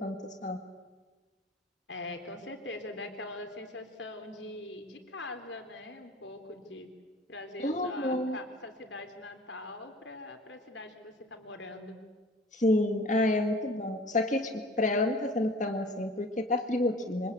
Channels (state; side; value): normal; both; correlation 0.45